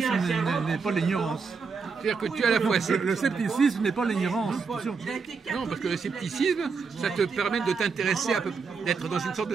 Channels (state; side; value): quieter; left; 5.1 dB